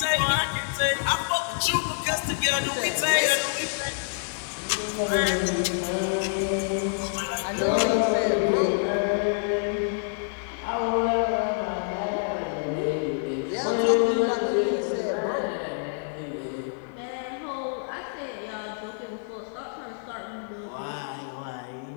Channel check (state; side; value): silent; right; digital silence